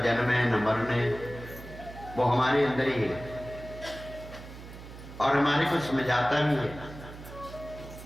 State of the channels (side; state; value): right; noise; hum, 14 dB below the sound